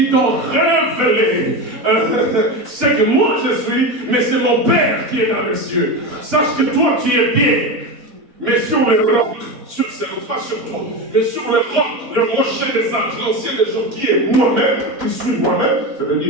t'ont révélé ce que moi je suis, mais c'est mon Père qui est dans les cieux. Sache que toi tu es bien, mais sur le roc, pas sur toi, mais sur le roc, le rocher des anges, l'ancien des jours qui est moi-même, qui suis moi-même,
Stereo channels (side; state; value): left; late; 4.1 ms